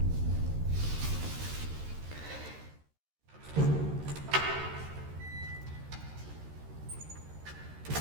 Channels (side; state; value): left; late; 13 ms